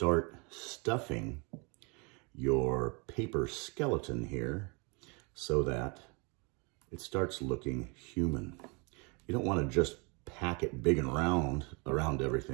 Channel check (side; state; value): left; quieter; 31.3 dB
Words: stuffing your paper skeleton here so that it starts looking human. You don't want to just pack it big and round around